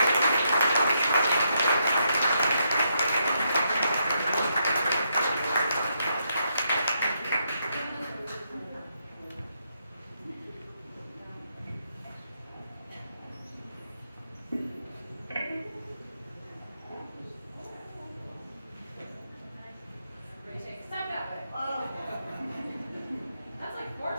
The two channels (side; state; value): both; inverted; correlation -0.79